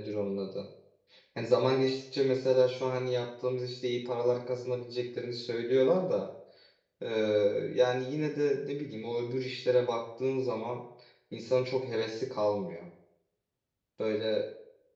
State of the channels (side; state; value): both; identical; correlation 1.00